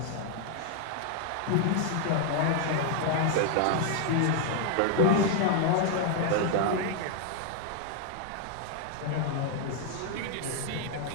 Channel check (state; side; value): different; both; correlation 0.00